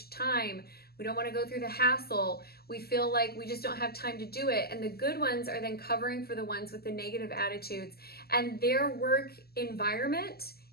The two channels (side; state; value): right; late; 0.46 ms